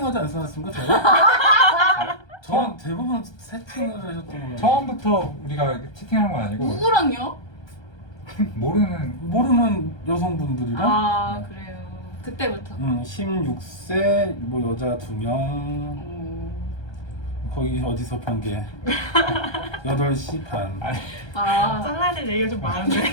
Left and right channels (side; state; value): right; late; 1.3 ms